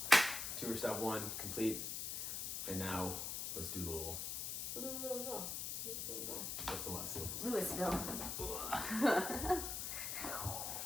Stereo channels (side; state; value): left; noise; hiss, 3 dB below the sound